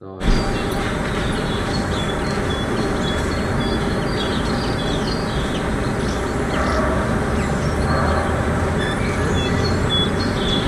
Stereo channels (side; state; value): both; identical; correlation 1.00